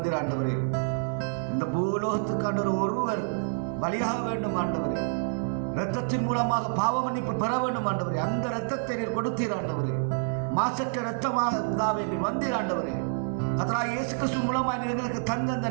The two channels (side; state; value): left; silent; 59 dB below the other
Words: ஆண்டவரே. இந்த பூலோகத்துக்கு ஆண்டவர் ஒருவர் பலியாக வேண்டும் ஆண்டவரே. இரத்தத்தின் மூலமாக பாவ மன்னிப்பு பெற வேண்டும் ஆண்டவரே. அந்த இரத்தத்தை நீர் கொடுத்தீர் ஆண்டவரே. மாசற்ற இரத்தமாக இருந்தாவே நீர் வந்தீர் ஆண்டவரே. கர்த்தராகிய இயேசு கிறிஸ்து மூலமாக நீர் எங்களுக்கு தந்த அந்த